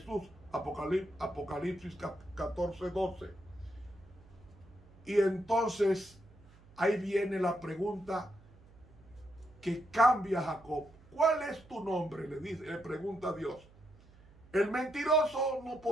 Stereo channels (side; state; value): right; noise; hum, 25 dB below the sound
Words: Apocalipsis 14:12. Y entonces ahí viene la pregunta que cambia a Jacob. ¿Cuál es tu nombre? Le pregunta a Dios. El mentiroso no